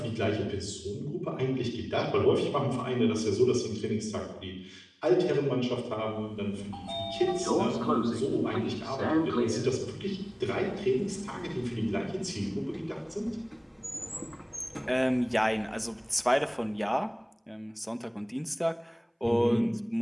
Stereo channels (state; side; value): identical; both; correlation 1.00